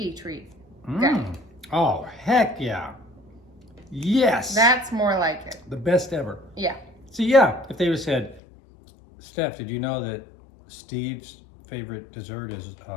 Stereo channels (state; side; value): drops out; right; at 8.4 s